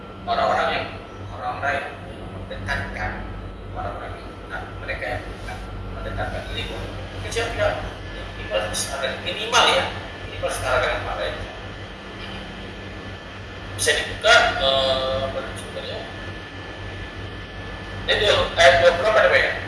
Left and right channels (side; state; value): both; identical; correlation 1.00